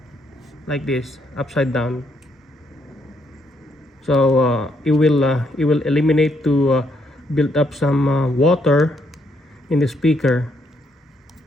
like this, upside down. So it will eliminate to build up some water in the speaker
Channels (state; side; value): normal; both; correlation 0.74